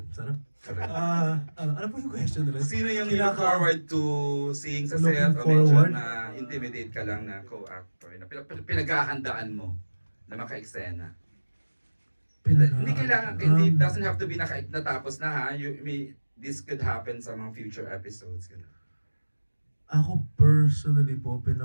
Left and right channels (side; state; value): both; inverted; correlation -1.00